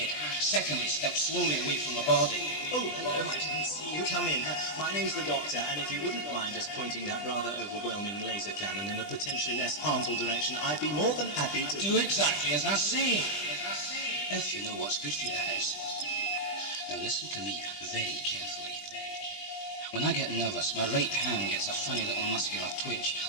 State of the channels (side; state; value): right; late; 20 ms